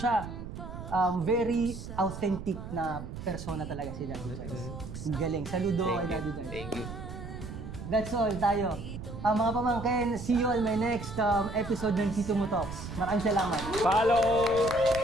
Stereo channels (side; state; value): right; noise; rumble, 9 dB below the sound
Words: Very authentic na persona talaga si Daddy Jars. Ang galing. Saludo kay Daddy Jars. Thank you. That's all tayo. Mga pamangkin, see you on my next episode ng Tito Mo Talks. Maraming salamat. Follow!